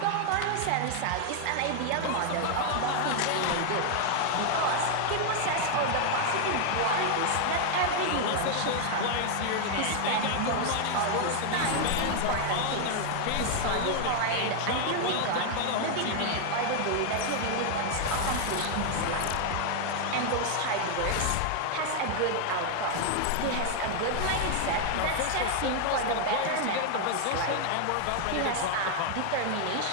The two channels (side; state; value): both; different; correlation 0.00